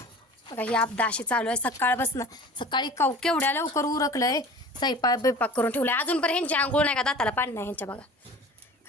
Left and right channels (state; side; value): normal; both; correlation 0.41